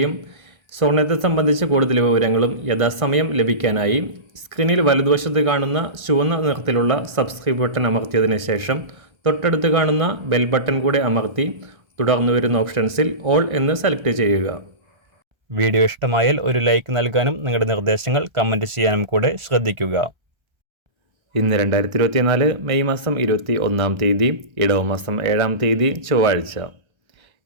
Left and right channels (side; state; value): left; late; 1.3 ms